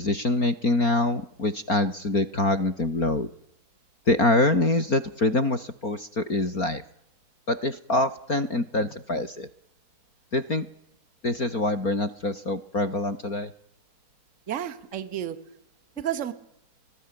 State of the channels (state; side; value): late; right; 4.3 ms